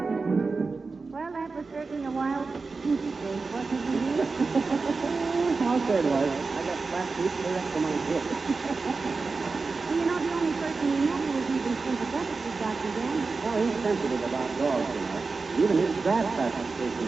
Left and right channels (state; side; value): quieter; left; 4.2 dB